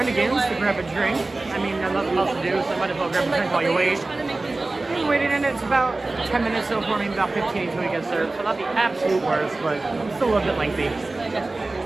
to grab a drink. I mean, there's nothing else to do, so I might as well grab a drink while you wait. Waiting in it's about 10 minutes so far, maybe about 15 until we get served. So not the absolute worst, but still a little bit lengthy.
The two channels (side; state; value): left; quieter; 3.2 dB